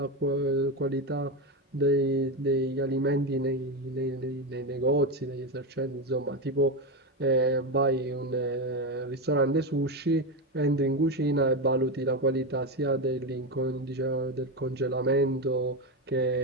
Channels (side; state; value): both; normal; correlation 0.13